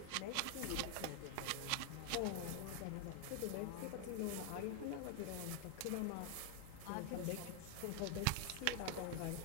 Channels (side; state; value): both; different; correlation 0.00